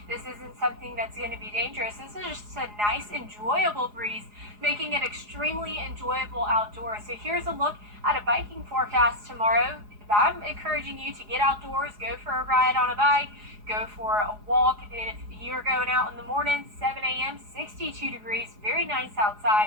This isn't something that's going to be dangerous. This is just a nice, enjoyable breeze, making it extremely enjoyable outdoors. So here's a look at a biking forecast tomorrow. I'm encouraging you to get outdoors, go for a ride on a bike, go for a walk. If you're going out in the morning, 7 a.m., 62 degrees, very nice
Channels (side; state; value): left; late; 4.8 ms